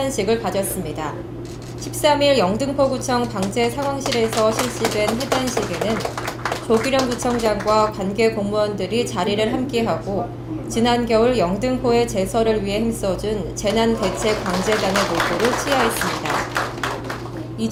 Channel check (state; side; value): identical; both; correlation 1.00